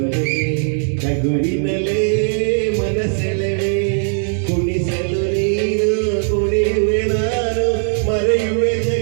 ನಗುವಿನಲ್ಲೇ ಮನಸೆಳೆವೆ, ಕುಣಿಸಲು ನೀನು ಕುಣಿಯುವೆ ನಾನು ಮರೆಯುವೆ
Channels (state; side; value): silent; left; digital silence